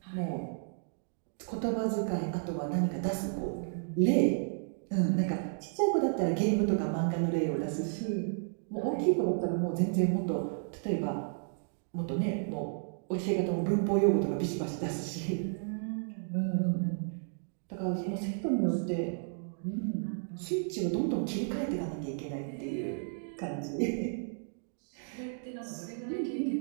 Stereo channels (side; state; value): left; silent; digital silence